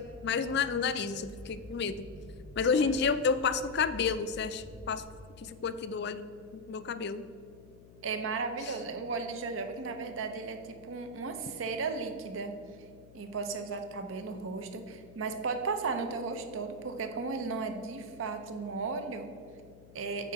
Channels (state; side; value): noise; left; hum, 21 dB below the sound